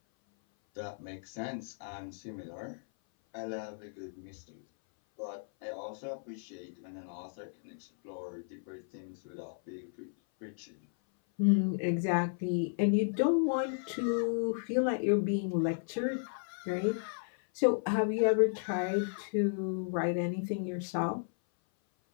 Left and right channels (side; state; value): right; silent; 55 dB below the other